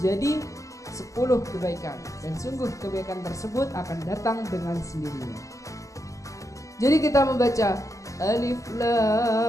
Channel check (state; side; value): late; right; 0.16 ms